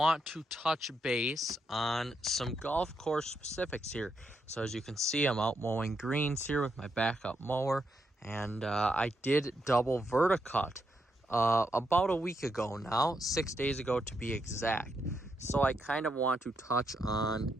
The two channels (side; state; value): both; normal; correlation 0.80